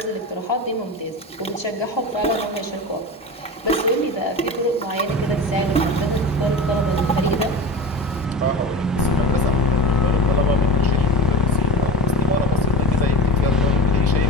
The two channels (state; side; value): normal; both; correlation 0.30